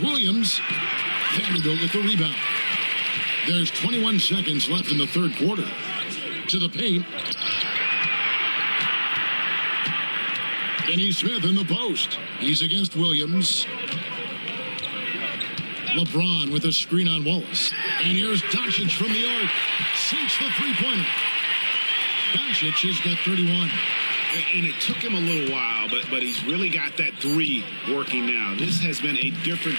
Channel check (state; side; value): inverted; both; correlation -1.00